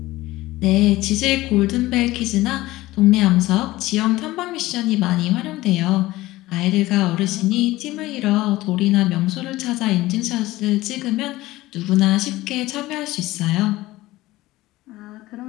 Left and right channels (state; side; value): quieter; right; 17.9 dB